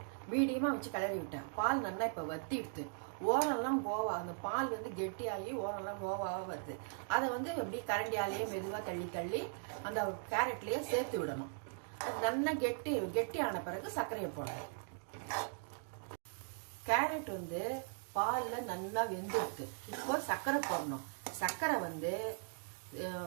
மீடியமா வச்சு கிளறி விட்டேன். பால் நல்லா இப்ப வத்திடுது. ஓரெல்லாம் கோவா, அந்த பால் கெட்டியாகி ஓரெல்லாம் கோவாவா வருது. அதை எப்படி கரண்டியாலேயே மெதுவா தள்ளி அந்த கேரட்லயே சேர்த்து விடணும். அது நல்லா கெட்டியான பிறகு சர்க்கரையை போடணும். கேரட் பால்ல நல்லா வெந்துடுது. இப்போ சர்க்கரை போடணும். சர்க்கரை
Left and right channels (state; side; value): silent; left; digital silence